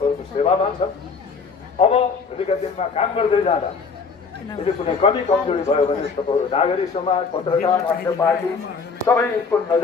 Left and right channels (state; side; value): quieter; right; 5.0 dB